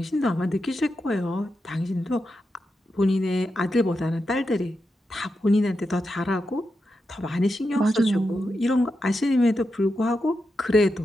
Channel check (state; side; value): normal; both; correlation 0.87